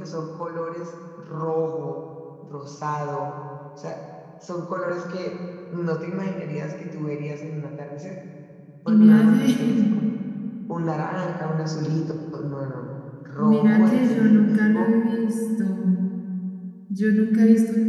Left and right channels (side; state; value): both; identical; correlation 1.00